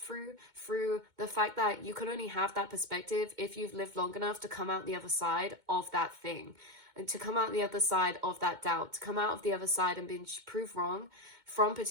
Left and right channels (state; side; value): late; left; 2.2 ms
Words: through the fact that you can only have that perspective if you've lived long enough to come out the other side of that thing. And to come out the other side of that doubt, to come out of the other side and being proved wrong from